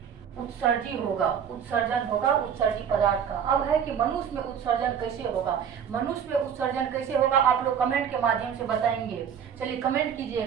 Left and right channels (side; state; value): left; quieter; 8.0 dB